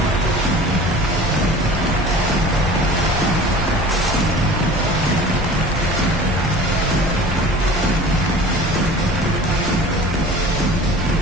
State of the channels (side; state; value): both; normal; correlation 0.42